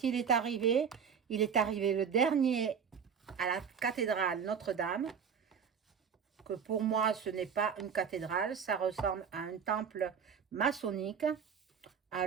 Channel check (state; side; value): quieter; left; 7.0 dB